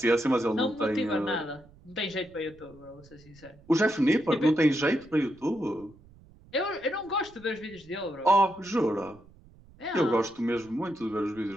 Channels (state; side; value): noise; right; rumble, 25 dB below the sound